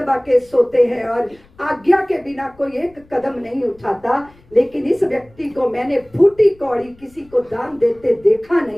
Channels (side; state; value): left; noise; rumble, 28 dB below the sound